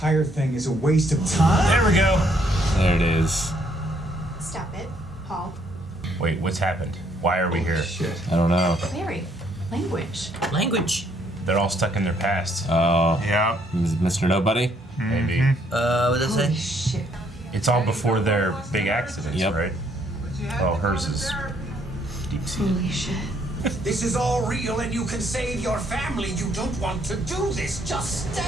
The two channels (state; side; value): normal; both; correlation 0.69